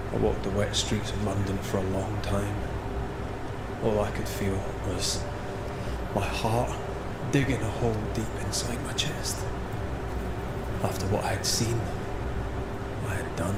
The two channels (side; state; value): both; identical; correlation 1.00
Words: I walked the wet streets of London for a long time. All I could feel was my heart digging a hole deep inside my chest. After what I had seen, what I had done,